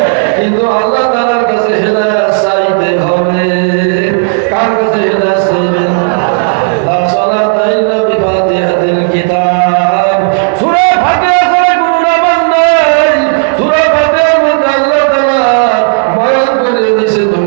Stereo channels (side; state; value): left; silent; 73 dB below the other